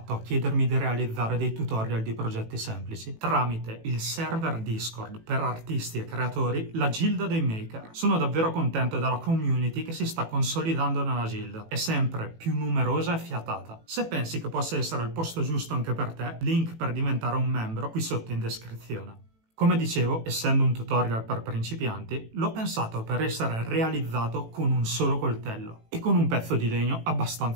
a chiedermi di realizzare dei tutorial di progetti semplici? Tramite il server Discord per artisti e creatori, la Gilda dei Maker. Sono davvero contento della community che si sta consolidando nella Gilda. È sempre più numerosa e fiatata. Se pensi che possa essere il posto giusto anche per te, link per diventare un membro qui sotto in descrizione. Come dicevo, essendo un tutorial per principianti, l'ho pensato per essere realizzato con un solo coltello e con un pezzo di legno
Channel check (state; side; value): late; left; 18 ms